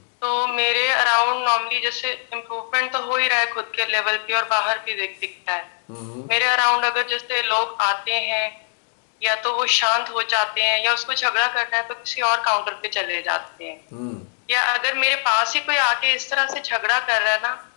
तो मेरे अराउंड नॉर्मली जैसे इम्प्रूवमेंट तो हो ही रहा है खुद के लेवल पे और बाहर भी दिखता है। मेरे अराउंड अगर जैसे लोग आते हैं या तो वो शांत हो जाते हैं या उसको झगड़ा करना है तो किसी और काउंटर पे चले जाते हैं, या अगर मेरे पास ही कोई आके इस तरह से झगड़ा कर रहा है ना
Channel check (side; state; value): right; silent; digital silence